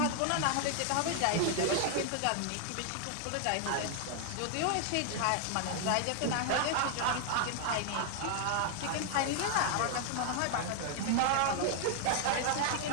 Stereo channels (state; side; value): different; both; correlation 0.00